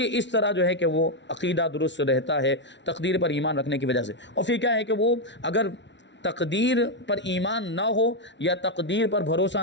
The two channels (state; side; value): late; right; 0.52 ms